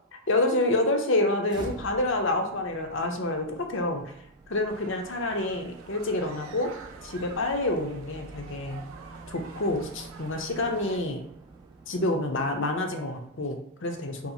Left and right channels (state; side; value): normal; both; correlation -0.08